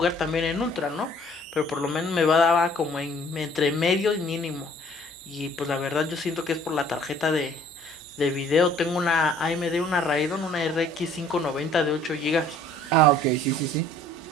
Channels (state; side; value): normal; both; correlation 0.56